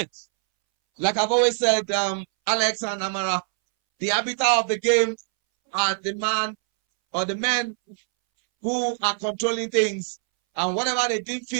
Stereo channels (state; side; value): silent; left; 63 dB below the other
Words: Like I've always said, Alex and Amara, the arbiter of the game are the man or the men who are controlling things, and whatever they deem